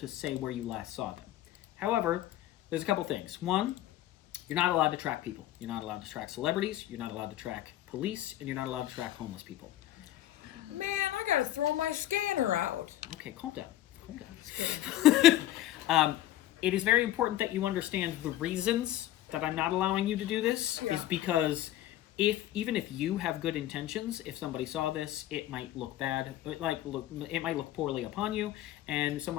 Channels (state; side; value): quieter; right; 13.8 dB